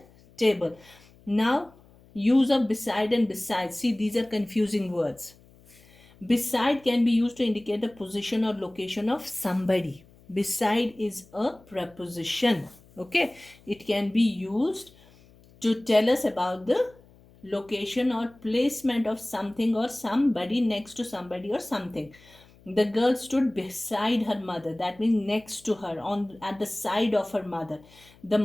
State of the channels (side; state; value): left; noise; hum, 27 dB below the sound